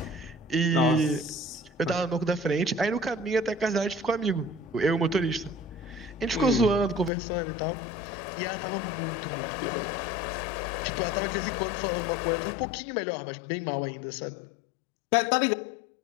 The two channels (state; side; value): drops out; right; at 7.1 s